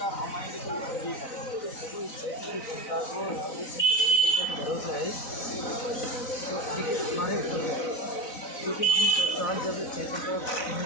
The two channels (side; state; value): right; late; 4.0 ms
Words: हम आएंगे तो भरोसा है। तो देखिए हमारे ऊपर क्योंकि हम साल जब क्षेत्र को